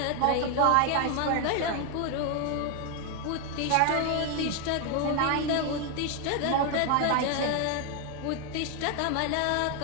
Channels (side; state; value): both; different; correlation 0.01